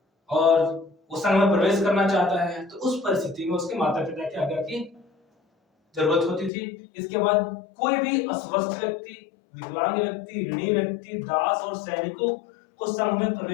और वो संघ में प्रवेश करना चाहता है, तो उस परिस्थिति में उसके माता पिता की आज्ञा की जरूरत होती थी। इसके बाद कोई भी अस्वस्थ व्यक्ति, विकलांग व्यक्ति, ऋणी व्यक्ति, दास और सैनिकों को संघ में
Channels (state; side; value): drops out; right; at 6.5 s